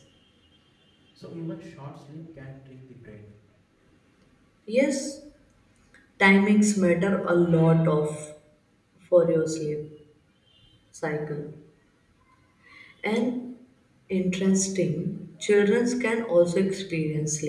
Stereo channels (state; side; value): identical; both; correlation 1.00